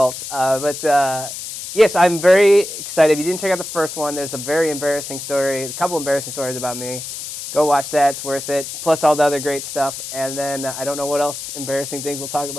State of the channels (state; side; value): noise; left; hiss, 8 dB below the sound